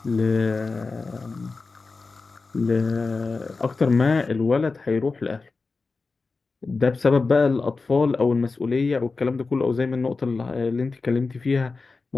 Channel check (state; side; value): quieter; right; 4.1 dB